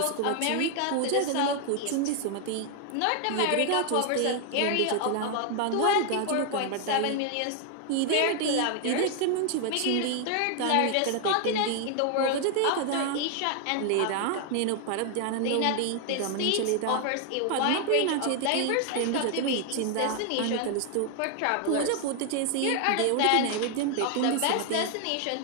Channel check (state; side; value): different; both; correlation 0.00